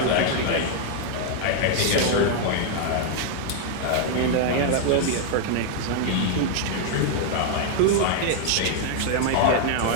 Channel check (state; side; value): different; both; correlation 0.00